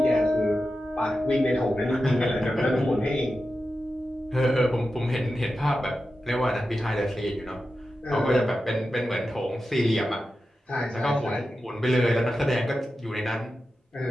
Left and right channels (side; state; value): both; normal; correlation 0.91